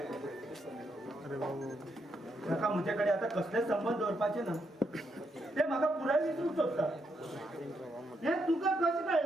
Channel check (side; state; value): both; normal; correlation 0.79